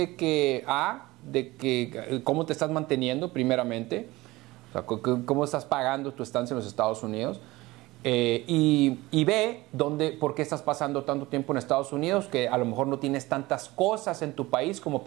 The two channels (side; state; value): left; quieter; 19.8 dB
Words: que cómo te estás manteniendo primeramente, o sea, cómo estás pagando tu estancia en los Estados Unidos, y B, por qué estás pasando tanto tiempo en Estados Unidos, que a lo mejor no tienes tantas cosas en tu país como